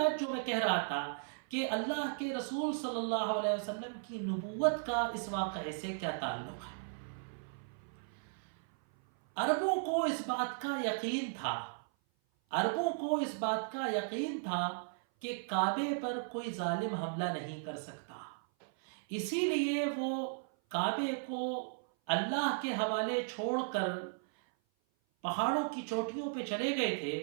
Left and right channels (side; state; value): left; silent; 54 dB below the other